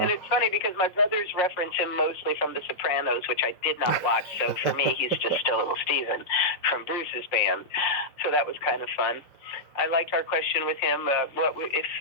it's funny because my brothers reference him mostly from The Sopranos, which I did not watch. So for me, he's just still little Steven from Bruce's band. So that was kind of fun. I liked our question with him.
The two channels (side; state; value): right; late; 5.5 ms